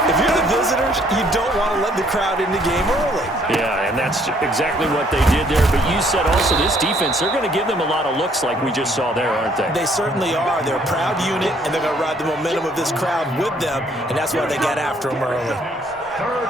If you're the visitors, you don't want to let the crowd in the game early. Yeah, and that's exactly what they did there. But you said also this defense, they're going to give them a lot of looks like we just saw there, aren't they? They certainly are. They're a proud unit, and they're going to ride the momentum of this crowd with them, and that's why they got after them early.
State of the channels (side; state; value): both; normal; correlation 0.64